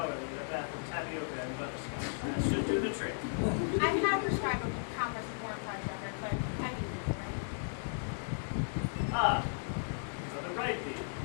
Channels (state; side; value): silent; right; digital silence